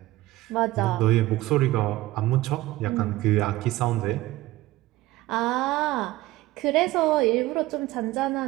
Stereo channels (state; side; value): quieter; left; 17.4 dB